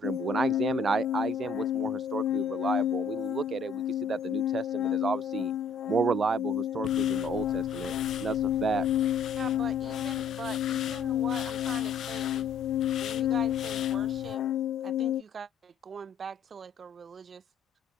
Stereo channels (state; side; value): quieter; right; 4.1 dB